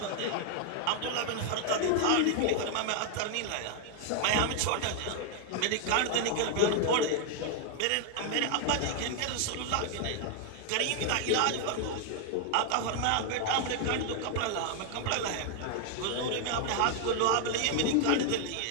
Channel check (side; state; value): both; different; correlation 0.00